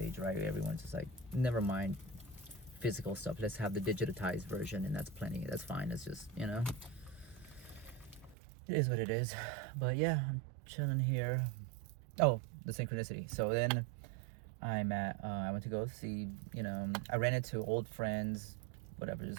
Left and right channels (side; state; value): left; drops out; at 8.3 s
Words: right? Everyone's just like, never mind physical stuff. Let's have the digitized version, and that's plenty. That's fine. It's just, it is what it is. But yeah, I'm chilling here. Oh, the synchronicity. So then I went to go see, I ran into old friends, whatever,